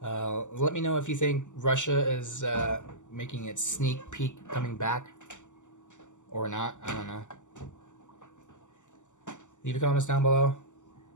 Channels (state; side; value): late; right; 0.85 ms